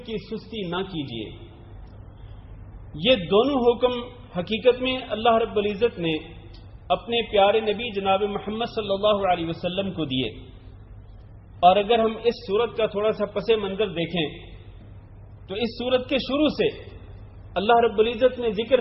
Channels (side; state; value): both; identical; correlation 1.00